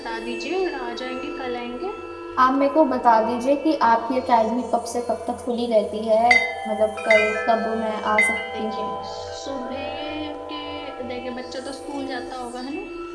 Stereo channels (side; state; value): both; identical; correlation 1.00